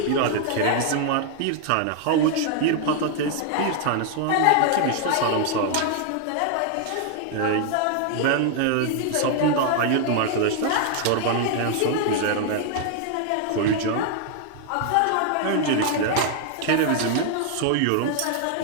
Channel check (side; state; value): both; different; correlation 0.00